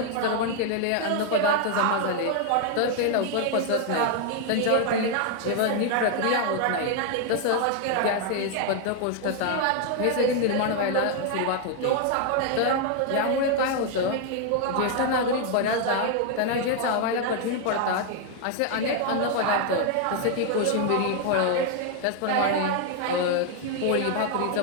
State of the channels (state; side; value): different; both; correlation 0.00